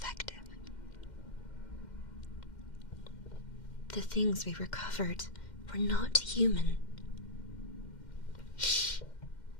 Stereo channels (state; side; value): late; right; 2.1 ms